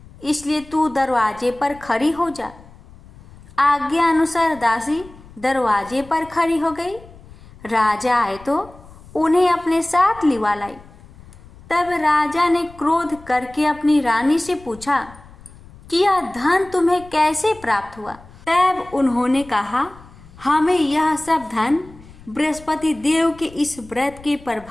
इसलिए तू दरवाजे पर खड़ी हो जा। आज्ञा अनुसार दासी दरवाजे पर खड़ी हो गई। राजा आए तो उन्हें अपने साथ लिवा लाई। तब राजा ने क्रोध करके अपनी रानी से पूछा कि यह धन तुम्हें कैसे प्राप्त हुआ? तब उन्होंने कहा, हमें यह सब धन बृहस्पति देव के इस व्रत के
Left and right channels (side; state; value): left; noise; rumble, 21 dB below the sound